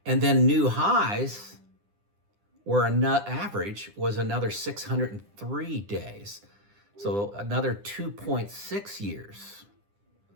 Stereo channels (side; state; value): left; late; 9.9 ms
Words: And then new highs were average was another 603 days. So another 2.6 years.